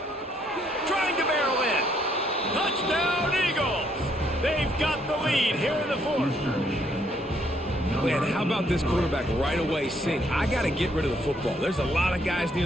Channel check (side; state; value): both; normal; correlation 0.70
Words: Trying to barrel in. Touchdown, Eagles! They've got the lead here in the fourth. Man, how about this quarterback right away saying, I got to get rid of the football. There's a lot of guys near